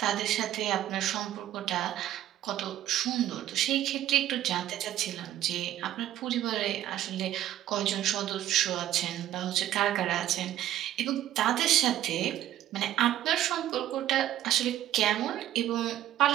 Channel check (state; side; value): quieter; left; 12.7 dB